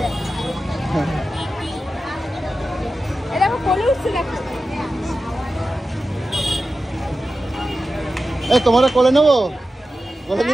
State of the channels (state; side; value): normal; both; correlation 0.93